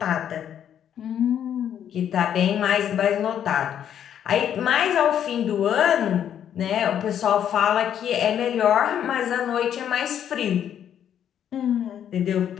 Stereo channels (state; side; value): quieter; right; 9.6 dB